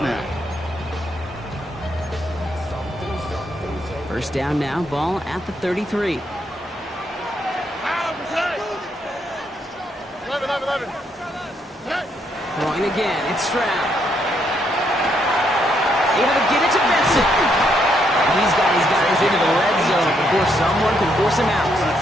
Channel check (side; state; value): both; normal; correlation 0.75